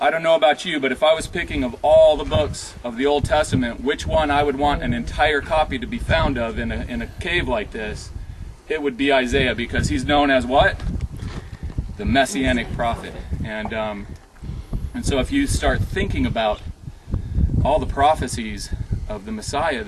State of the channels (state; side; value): identical; both; correlation 1.00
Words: I don't know about you, but if I was picking of all the books of the Old Testament, which one I would want an entire copy to be found of in a cave like this, it would be Isaiah, because he's known as what? The Messianic prophet. And so if you start thinking about all the prophecies of the Messiah